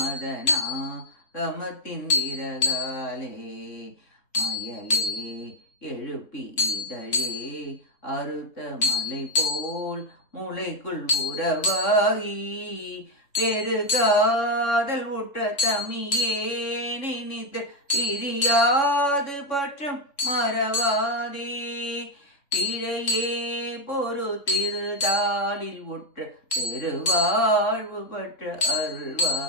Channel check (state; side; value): late; right; 3.6 ms